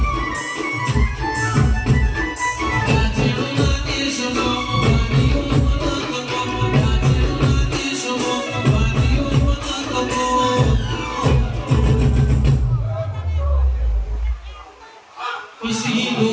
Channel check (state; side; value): identical; both; correlation 1.00